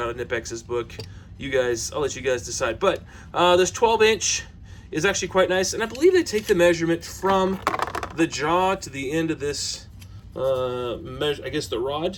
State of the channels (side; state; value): both; identical; correlation 1.00